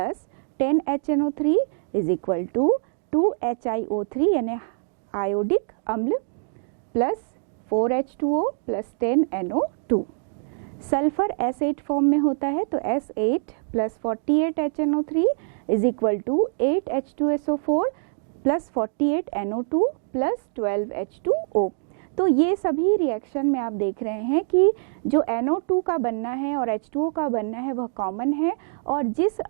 10HNO3 is equal to 2HiO3 यानी आयोडिक अम्ल plus 4H2O plus 10NO2। Sulphur S8 form में होता है तो S8 plus 48HNO3 is equal to 8H2SO4 plus 48NO2 plus 12H2O। तो ये सभी रिएक्शन में आप देख रहे हैं कि जो NO2 का बनना है और H2O का बनना है वह कॉमन है और जिस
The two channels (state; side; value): silent; left; 62 dB below the other